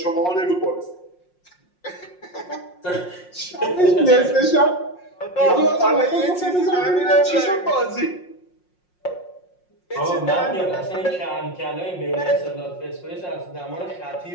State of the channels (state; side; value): late; right; 5.6 ms